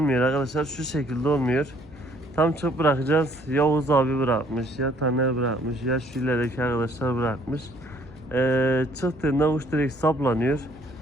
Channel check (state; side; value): noise; right; hum, 25 dB below the sound